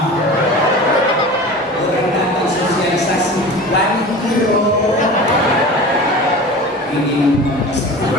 Orang datang sosialisasi lagi kiro. Ini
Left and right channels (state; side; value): normal; both; correlation 0.35